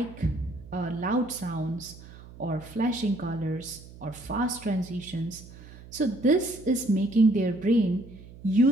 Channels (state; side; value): noise; right; hum, 18 dB below the sound